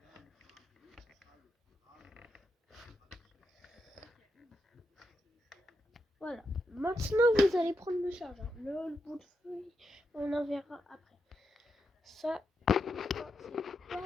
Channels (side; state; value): both; normal; correlation 0.84